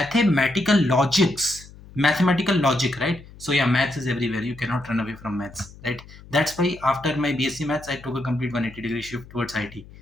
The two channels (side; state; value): left; noise; hum, 20 dB below the sound